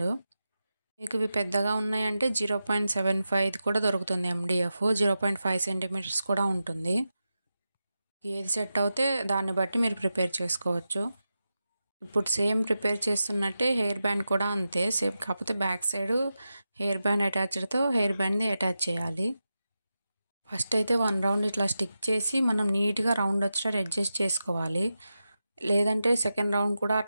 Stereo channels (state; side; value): inverted; both; correlation -0.91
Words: మీకు ఇవి పెద్దగా ఉన్నాయంటే 0.75 కూడా దొరుకుతుంది MDF. 0.5 సెంటీమీటర్స్ కూడా ఉంటుంది. ఏది సెట్ అవుతే దాన్ని బట్టి మీరు ప్రిపేర్ చేసుకోవచ్చు. ఇప్పుడు సేమ్ ప్రిపేర్ చేస్తున్నట్టే హెయిర్ బ్యాండ్ కూడా అంతే సేమ్, కాకపోతే బ్యాక్ సైడ్ హెయిర్ బ్యాండ్ అటాచ్డ్తో హెయిర్ బ్యాండ్ని అటాచ్ చేయాలి. ఫస్ట్ అయితే 1 రౌండ్ ఇట్లా స్టిక్ చేసి మనం నీట్గా రౌండ్ వచ్చేటట్టు అడ్జస్ట్ చేసుకోవాలి. లేదంటే సెకండ్ రౌండ్ కూడా